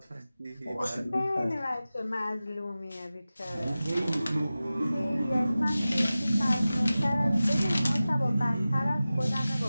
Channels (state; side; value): inverted; both; correlation -0.96